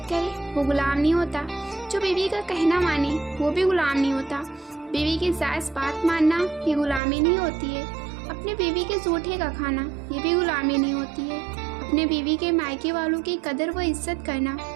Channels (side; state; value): left; drops out; at 7.0 s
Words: کرے وہ غلام نہیں ہوتا، جو بیوی کا کہنا مانے وہ بھی غلام نہیں ہوتا۔ بیوی کی جائز بات ماننا یہ غلامی نہیں ہوتی ہے۔ اپنے بیوی کے جھوٹے کا کھانا یہ بھی غلامی نہیں ہوتی ہے۔ اپنے بیوی کے مائکے والوں کی قدر و عزت کرنا